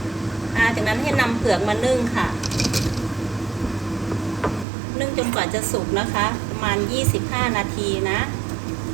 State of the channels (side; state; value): left; drops out; at 4.7 s